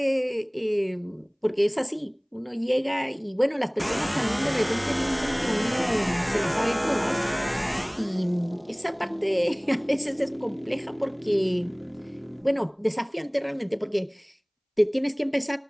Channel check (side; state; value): both; identical; correlation 1.00